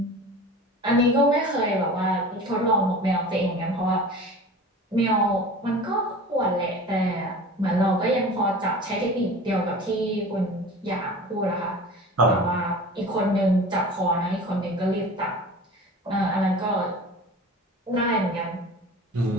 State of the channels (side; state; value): both; normal; correlation 0.38